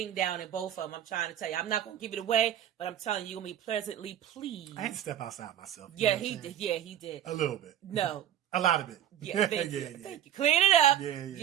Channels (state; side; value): quieter; left; 10.9 dB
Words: down in both of them. I'm trying to tell you. I'm not going to give it away, but I'm telling you, you're going to be pleasantly pleased. I had to step outside myself. Yeah, he did. Yeah, he did. A little bit. No. A lot of it. Yeah, thank you. Thank you. Clean it up.